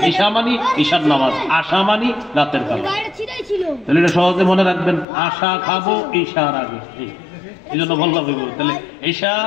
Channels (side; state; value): right; drops out; at 5.1 s